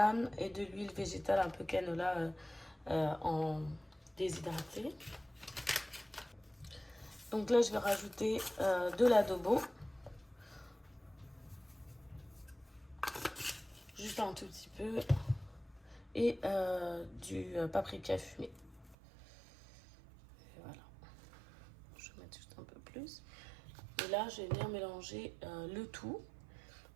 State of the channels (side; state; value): left; drops out; at 18.9 s